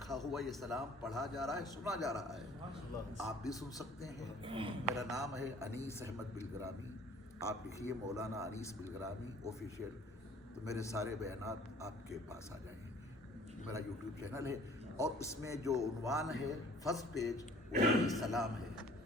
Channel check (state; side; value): normal; both; correlation 0.53